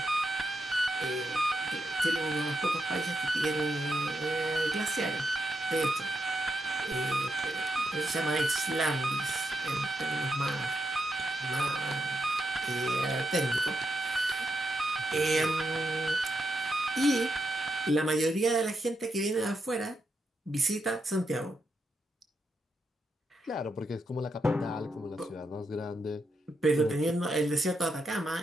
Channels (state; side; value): normal; both; correlation 0.83